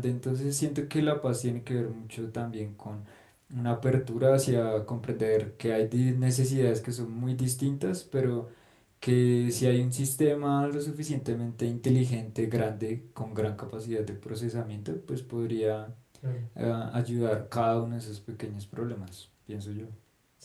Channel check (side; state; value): both; identical; correlation 1.00